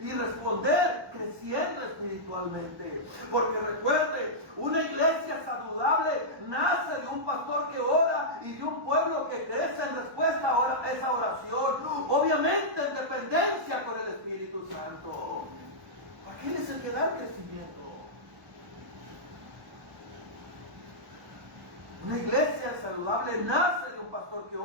y responder creciendo espiritualmente. Porque recuerde, una iglesia saludable nace de un pastor que ora y de un pueblo que crece en respuesta a esa oración, obviamente en dependencia con el Espíritu Santo. Aquel es el que da el crecimiento. Una iglesia saludable nace de un pastor que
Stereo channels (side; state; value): left; late; 1.1 ms